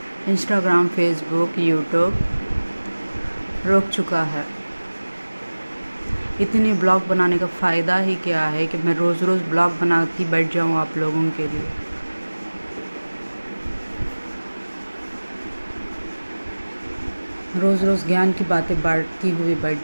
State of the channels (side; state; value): both; inverted; correlation -1.00